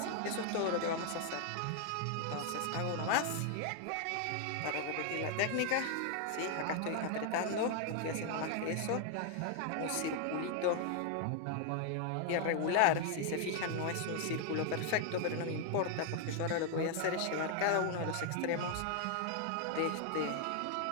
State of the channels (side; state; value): both; different; correlation 0.00